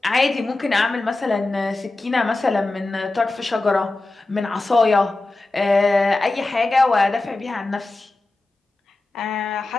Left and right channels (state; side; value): quieter; right; 3.1 dB